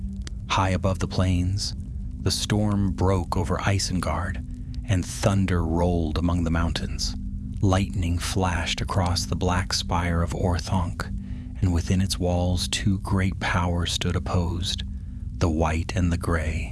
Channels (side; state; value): both; identical; correlation 1.00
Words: High above the plains, the storm broke over Isengard, and thunder rolled among the mountains. Lightning flashed across the black spire of Orthanc, and within its walls two great powers stood opposed, the white and the